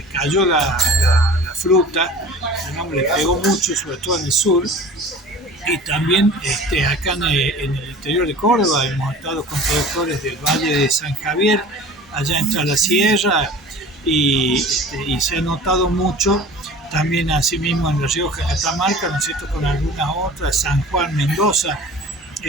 cayó la fruta, digamos, le pegó mucho, sobre todo en el sur, y también acá en el interior de Córdoba hemos estado con productores del Valle de San Javier, allá entre la sierra, y se ha notado mucho también asimismo en La Rioja, Catamarca, ¿no es cierto?, con algunas otras, San Juan, Mendoza,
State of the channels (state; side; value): normal; both; correlation 0.41